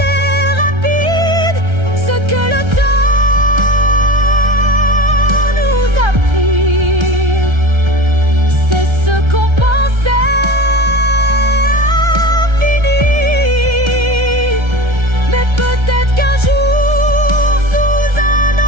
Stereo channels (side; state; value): left; late; 1.3 ms